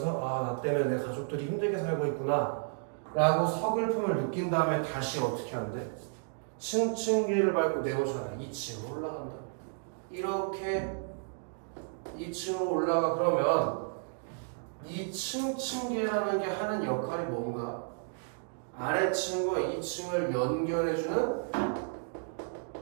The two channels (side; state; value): left; silent; digital silence